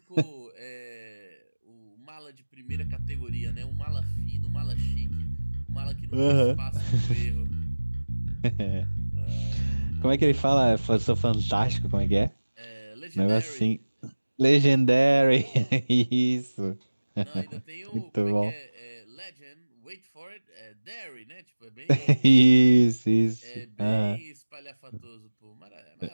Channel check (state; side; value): inverted; both; correlation -1.00